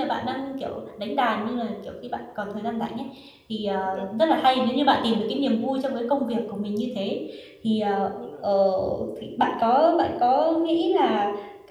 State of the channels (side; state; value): both; identical; correlation 1.00